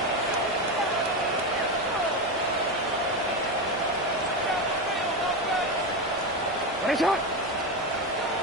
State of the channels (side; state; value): both; normal; correlation 0.15